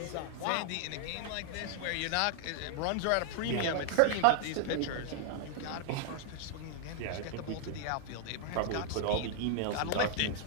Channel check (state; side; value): different; both; correlation 0.00